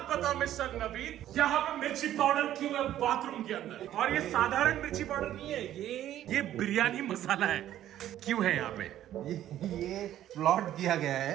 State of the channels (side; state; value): left; quieter; 12.3 dB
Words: बताओ मिस्टर नवीन, यहाँ पे मिर्ची पाउडर क्यों है बाथरूम के अंदर? और ये साधारण मिर्ची पाउडर नहीं है, ये बिरयानी मसाला है। क्यों है यहाँ पे? ये प्लॉट किया गया है